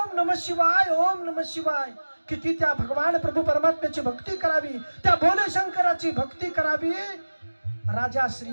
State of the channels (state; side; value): inverted; both; correlation -1.00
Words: नमः शिवाय, ओम नमः शिवाय. किती त्या भगवान प्रभू परमात्म्याची भक्ती करावी, त्या भोले शंकराची भक्ती करावी. राजा